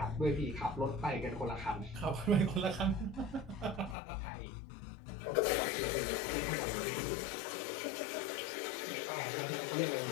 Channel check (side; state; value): right; drops out; at 4.0 s